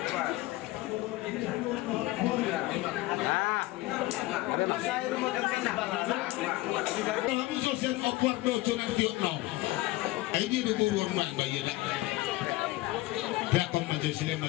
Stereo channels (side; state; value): right; quieter; 18.9 dB